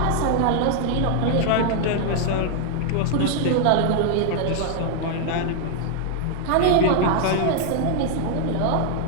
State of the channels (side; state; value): both; different; correlation 0.00